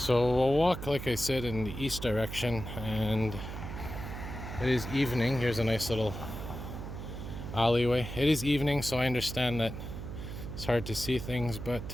we'll walk, like I said, in the east direction, and it is evening. Here's a nice little alleyway. It is evening, so I understand that it's hard to see things,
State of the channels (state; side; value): noise; right; hum, 8 dB below the sound